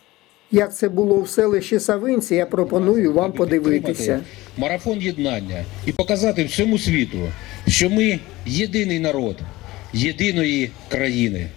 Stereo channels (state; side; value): quieter; right; 19.0 dB